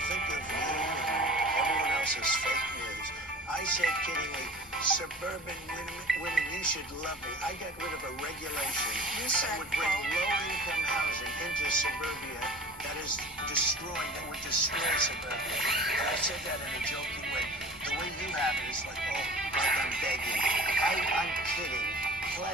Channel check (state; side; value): normal; both; correlation 0.43